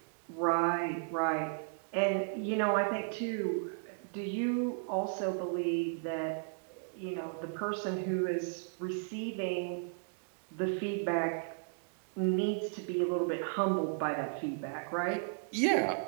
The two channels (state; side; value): silent; left; digital silence